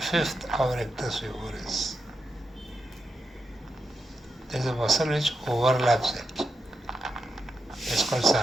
of rectus femoris, there is a muscle which overlaps it. It's called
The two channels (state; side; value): normal; both; correlation 0.86